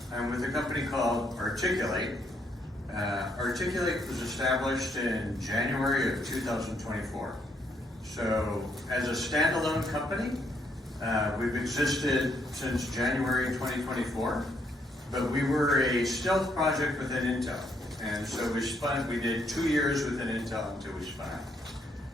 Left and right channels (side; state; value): both; normal; correlation 0.73